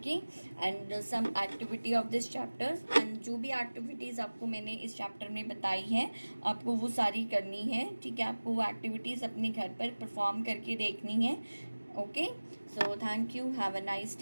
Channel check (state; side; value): inverted; both; correlation -1.00